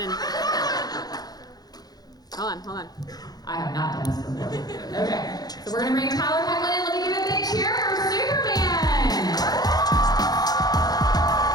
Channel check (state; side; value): late; right; 0.19 ms